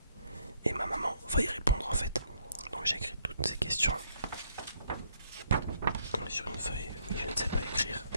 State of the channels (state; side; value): inverted; both; correlation -0.69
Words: et ma maman va y répondre en fait. Donc j'ai écrit toutes ces questions sur une feuille. Oui, je ne sais pas écrire,